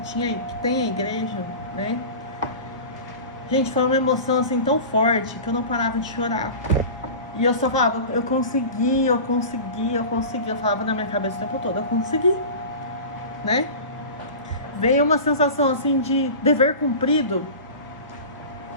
tem a igreja, né? Gente, foi uma emoção assim tão forte que eu não parava de chorar. E eu só falava, eu consegui. Eu falava na minha cabeça o tempo todo, eu consegui, né? Veio uma sensação assim de dever cumprido,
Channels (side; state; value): both; inverted; correlation -0.34